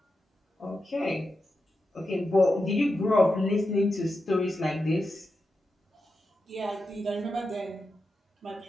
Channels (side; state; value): both; normal; correlation 0.89